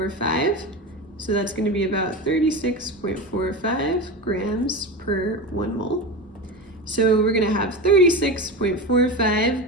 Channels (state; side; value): normal; both; correlation 0.24